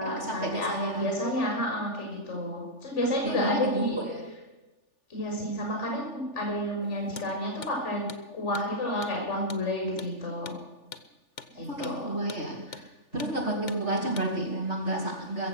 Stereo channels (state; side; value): late; right; 3.4 ms